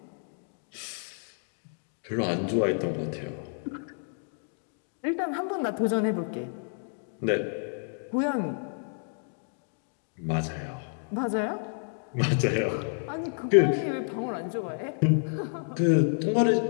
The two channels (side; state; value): right; silent; 55 dB below the other